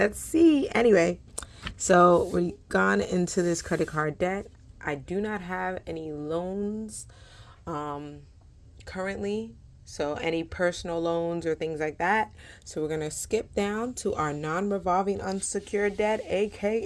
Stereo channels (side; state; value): both; identical; correlation 1.00